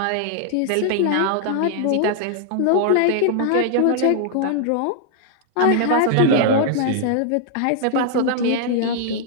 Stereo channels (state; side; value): different; both; correlation 0.00